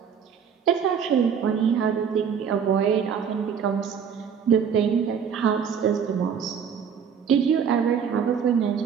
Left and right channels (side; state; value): left; quieter; 7.3 dB